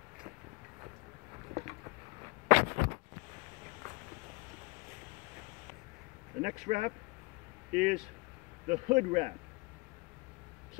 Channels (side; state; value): right; quieter; 26.6 dB